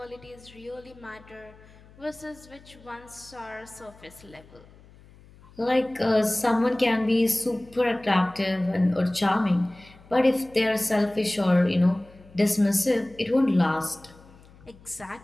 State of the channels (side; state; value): left; noise; hum, 24 dB below the sound